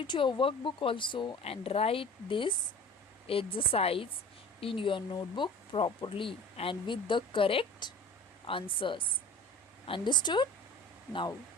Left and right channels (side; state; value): both; normal; correlation 0.40